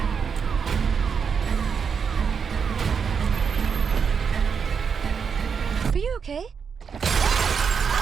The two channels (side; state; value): left; quieter; 6.4 dB